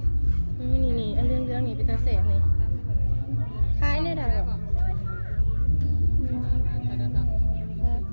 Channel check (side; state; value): both; inverted; correlation -1.00